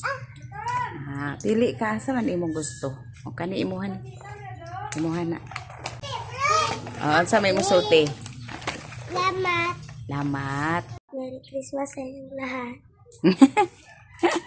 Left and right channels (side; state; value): both; identical; correlation 1.00